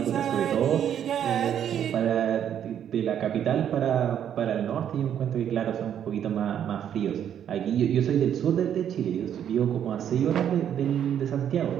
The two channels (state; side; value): quieter; left; 9.5 dB